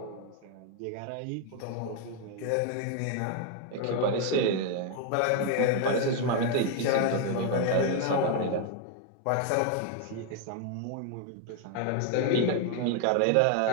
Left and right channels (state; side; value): different; both; correlation 0.00